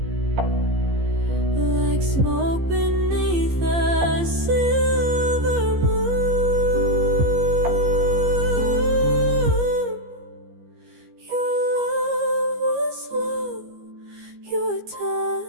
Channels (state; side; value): late; left; 15 ms